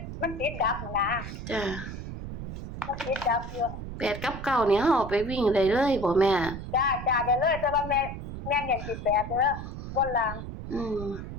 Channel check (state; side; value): noise; right; rumble, 8 dB below the sound